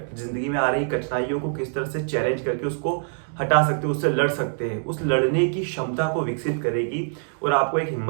में आ रही कठिनाइयों को किस तरह से चैलेंज करके उसको हटा सकते हैं, उससे लड़ सकते हैं। उस लड़ने की क्षमता को विकसित करेगी और आपको एक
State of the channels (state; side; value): silent; left; digital silence